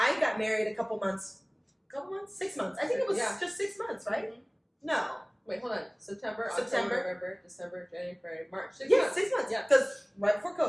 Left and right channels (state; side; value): identical; both; correlation 1.00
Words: got married a couple months, 6 months. I think it was just 6 months, right? Mm-hmm. No. Wait, hold on. September, October, November, December, January, February, March. 6 months. 6 months. Yeah. Because right before